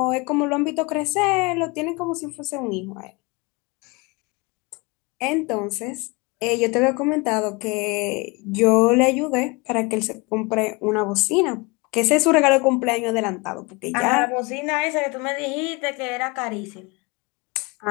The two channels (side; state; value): right; quieter; 27.0 dB